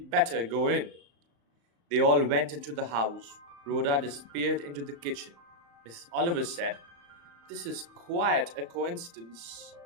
better go in. They all went into the house. Rhoda disappeared into the kitchen. Mrs. Oliver said, This is quite a coincidence,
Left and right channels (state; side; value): late; left; 35 ms